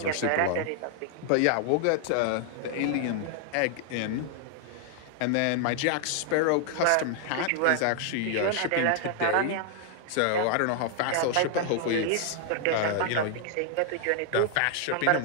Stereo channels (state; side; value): different; both; correlation 0.00